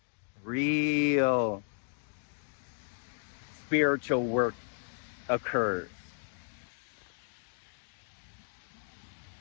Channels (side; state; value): right; silent; digital silence